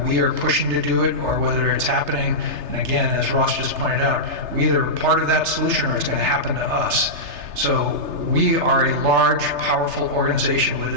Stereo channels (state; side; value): late; left; 3.3 ms